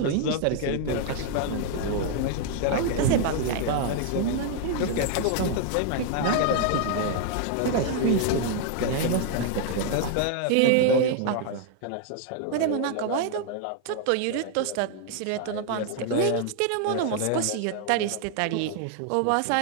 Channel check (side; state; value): both; different; correlation 0.00